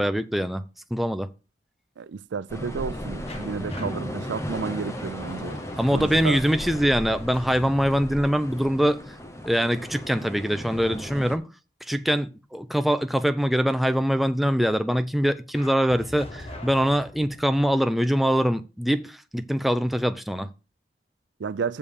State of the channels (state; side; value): normal; both; correlation 0.92